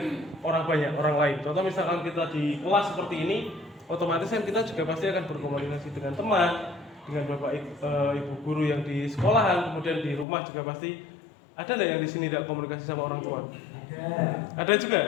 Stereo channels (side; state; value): right; drops out; at 10.2 s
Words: orang banyak, orang lain. Contoh misalkan kita di kelas seperti ini, otomatis kan kita juga pasti akan berkomunikasi dengan teman, dengan bapak ibu guru yang di sekolahan, kemudian di rumah juga pasti. Ada nggak yang di sini tidak komunikasi sama orang tua? Ada